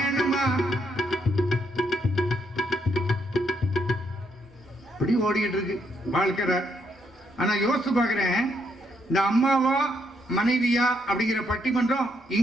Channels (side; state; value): both; normal; correlation 0.75